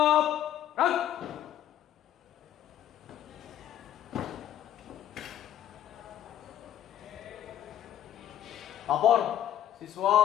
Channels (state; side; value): quieter; right; 11.2 dB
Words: gerak. Lapor, siswa